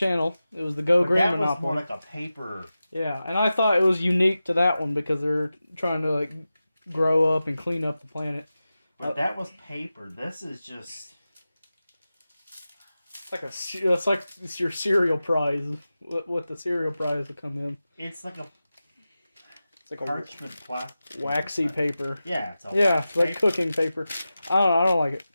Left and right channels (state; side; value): inverted; both; correlation -0.94